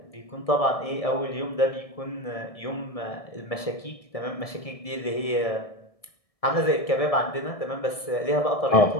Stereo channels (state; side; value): late; right; 1.7 ms